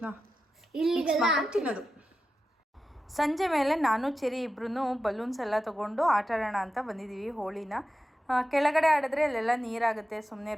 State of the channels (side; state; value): both; normal; correlation 0.91